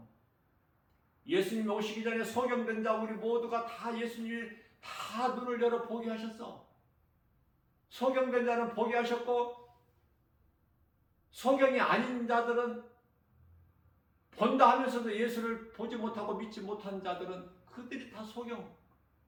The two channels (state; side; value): identical; both; correlation 1.00